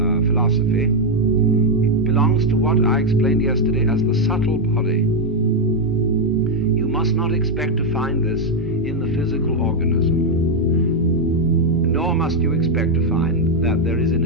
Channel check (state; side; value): normal; both; correlation 0.01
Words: philosophy belongs to what I explained yesterday as the subtle body. You must not expect to find this in the physical organism, nor must you expect to find that there is, in